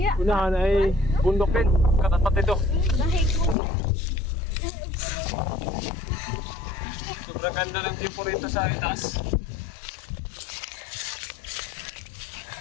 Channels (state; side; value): drops out; right; at 3.6 s